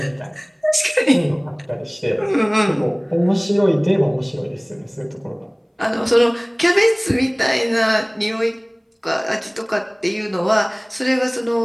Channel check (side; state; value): both; identical; correlation 1.00